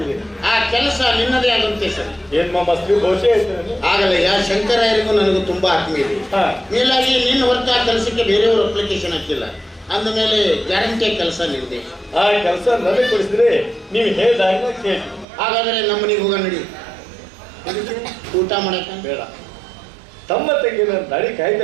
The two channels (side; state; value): left; drops out; at 15.2 s